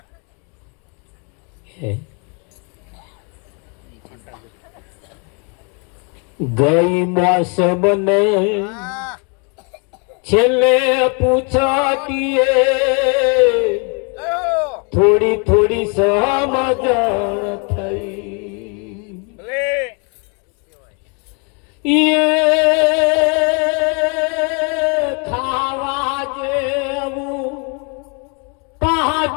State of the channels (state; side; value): quieter; right; 35.7 dB